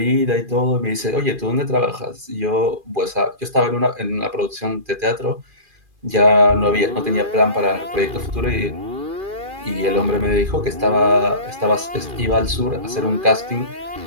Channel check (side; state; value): left; late; 2.4 ms